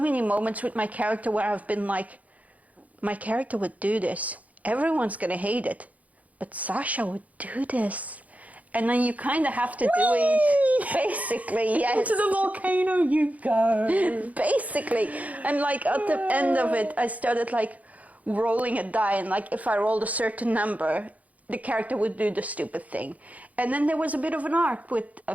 many moments with my character where I've been like, my character would do this. Everyone's going to hate it. But Sasha would do this. And then you kind of have to do it, basically, yes. Into the volcano you go. Basically. And like at the end of it, I started like rolling a die, and like if I rolled a certain number, the character would do the stupid thing. And then there was a bit of an arc with a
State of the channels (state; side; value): late; left; 0.072 ms